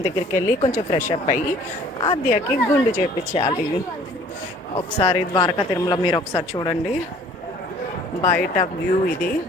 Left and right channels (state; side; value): normal; both; correlation 0.53